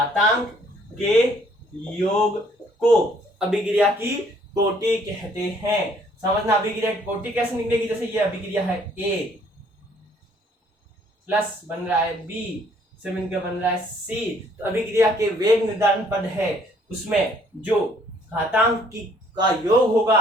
को अभिक्रिया की कोटि कहते हैं। समझना, अभिक्रिया की कोटि कैसे निकलेगी? जैसे ये अभिक्रिया है A प्लस बन रहा है B से मिलकर बन रहा है C, तो अभिक्रिया के वेग निर्धारण पद है, उसमें जो घातांक का योग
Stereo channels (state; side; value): normal; both; correlation 0.62